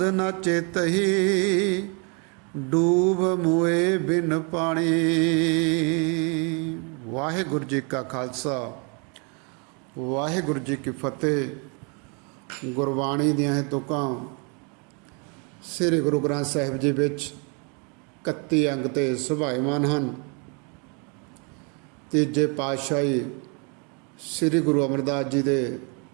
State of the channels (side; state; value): left; quieter; 35.2 dB